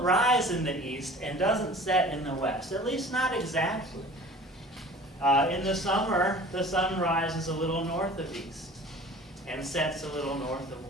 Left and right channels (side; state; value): both; normal; correlation 0.43